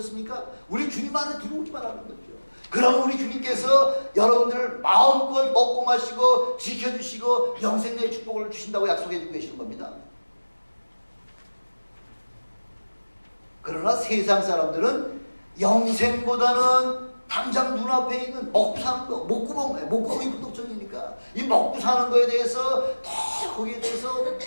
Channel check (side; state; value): both; inverted; correlation -1.00